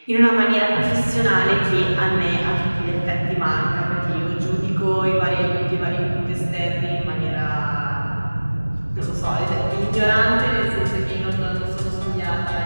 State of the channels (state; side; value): inverted; both; correlation -1.00